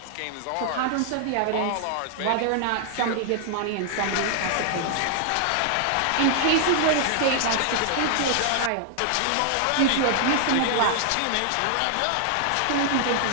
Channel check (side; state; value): both; different; correlation 0.00